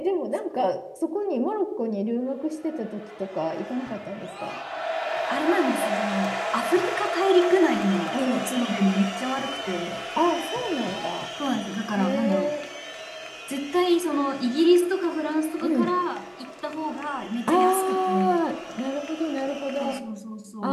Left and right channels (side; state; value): both; identical; correlation 1.00